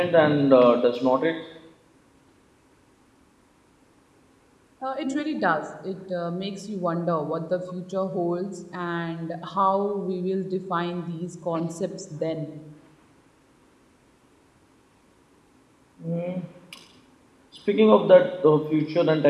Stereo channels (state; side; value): identical; both; correlation 1.00